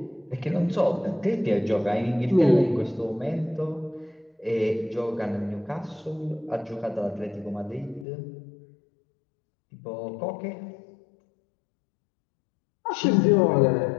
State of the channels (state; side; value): drops out; right; at 8.1 s